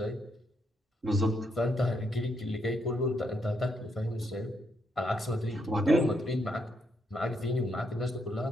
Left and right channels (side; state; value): both; normal; correlation 0.77